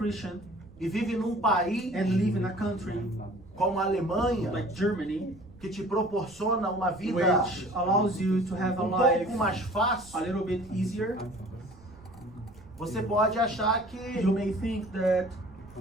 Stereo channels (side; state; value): right; noise; rumble, 23 dB below the sound